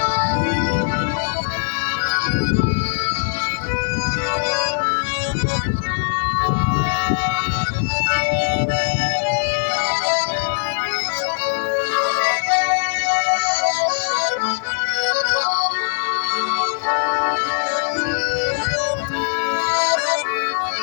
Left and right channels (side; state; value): right; silent; digital silence